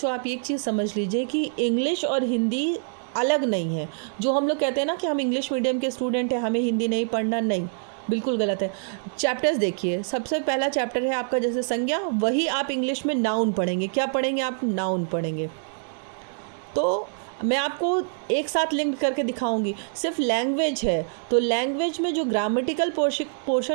आप एक चीज़ समझ लीजिए कि इंग्लिश और हिंदी अलग नहीं है। जो हम लोग कहते हैं ना कि हम इंग्लिश मीडियम के स्टूडेंट हैं, हमें हिंदी नहीं पढ़ना, नहीं, बिल्कुल गलत है। चैप्टर्स देखिए, सबसे पहला चैप्टर है आपका जैसे संज्ञा, वही आप इंग्लिश में नाउन पढ़ेंगे। क्या पढ़ेंगे आप? नाउन पढ़ेंगे। तो मैं आपको एक साथ लिंक करके दिखाऊंगी। सिर्फ लैंग्वेज है तो लैंग्वेज में जो ग्रामेटिकल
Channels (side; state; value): left; silent; digital silence